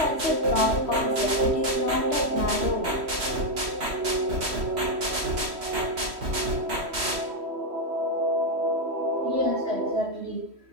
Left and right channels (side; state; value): left; late; 3.1 ms